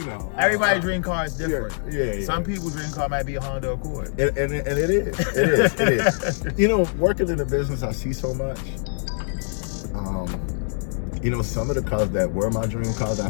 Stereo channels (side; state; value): right; silent; digital silence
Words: know. Everybody's dream car is different. Yeah. Some people's dream car might be a Honda Accord. And it is. It is. You know, working in the business, I see so much. You know, some of the cars that were my dream cars,